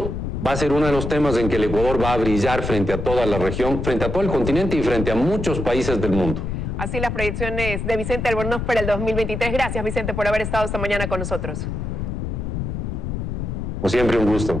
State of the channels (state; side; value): noise; left; rumble, 4 dB below the sound